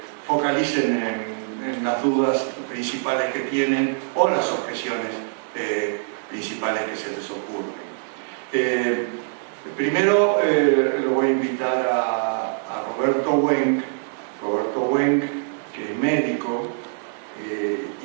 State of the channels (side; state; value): left; silent; digital silence